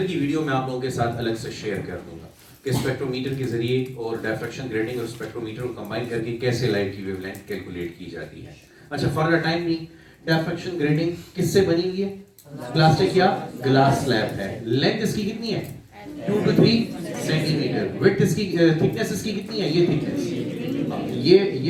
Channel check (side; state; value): both; identical; correlation 1.00